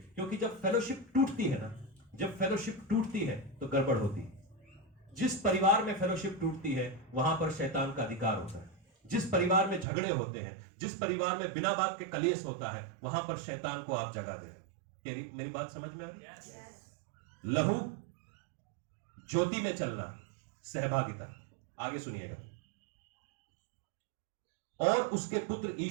क्योंकि जब फेलोशिप टूटती है ना, जब फेलोशिप टूटती है तो गड़बड़ होती है। जिस परिवार में फेलोशिप टूटती है वहां पर शैतान का अधिकार होता है। जिस परिवार में झगड़े होते हैं, जिस परिवार में बिना बात के कलेश होता है, वहां पर शैतान को आप जगह दे रहे हैं। मेरी बात समझ में आ रही? लहू, ज्योति में चलना, सहभागिता। आगे सुनिएगा। और उसके पुत्र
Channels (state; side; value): drops out; left; at 9.9 s